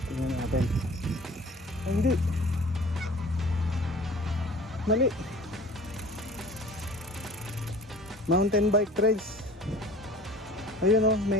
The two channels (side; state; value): both; normal; correlation 0.45